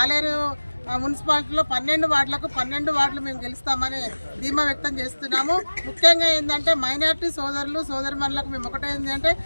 ఆలేరు మున్సిపాలిటీలో 12 వార్డులకు 12 వార్డులు మేము గెలుస్తామని ధీమా వ్యక్తం చేస్తున్నాము. ముఖ్యంగా ఏంటంటే మైనార్టీ సోదరులు సోదరిమణులకు మేము ఒకటే ఏంటంటే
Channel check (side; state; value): both; inverted; correlation -1.00